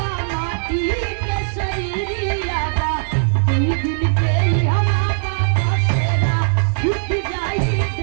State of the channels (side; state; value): left; silent; 58 dB below the other